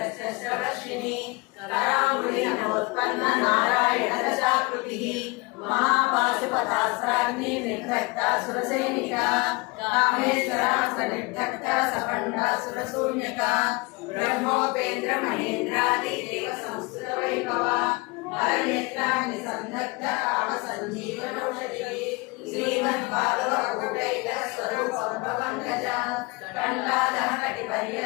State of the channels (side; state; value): right; quieter; 26.1 dB